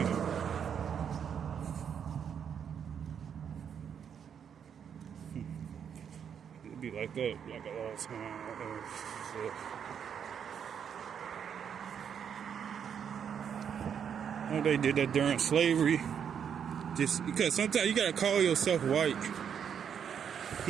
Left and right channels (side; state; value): left; quieter; 7.9 dB